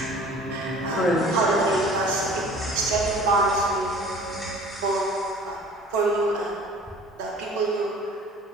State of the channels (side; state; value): both; normal; correlation 0.47